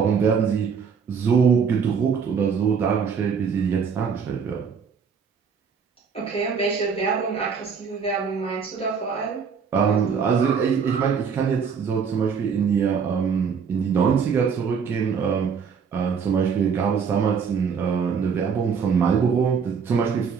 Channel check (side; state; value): left; quieter; 6.3 dB